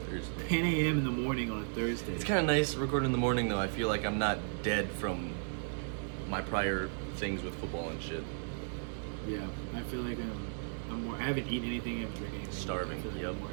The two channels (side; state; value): left; silent; digital silence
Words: Thursday. 10 a.m. in the morning on a Thursday. It's kind of nice recording in the morning though. I feel like I'm not dead from my prior things with football and shit. Yeah, I feel like I'm more. I haven't eaten anything. I haven't drank anything. Starving, I feel like yep.